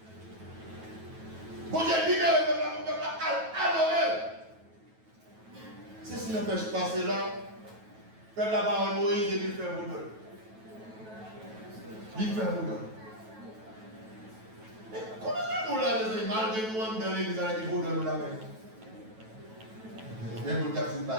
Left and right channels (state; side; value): late; left; 9.2 ms